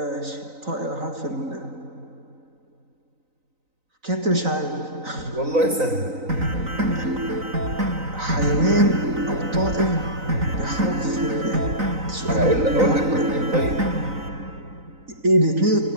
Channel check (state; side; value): late; left; 3.9 ms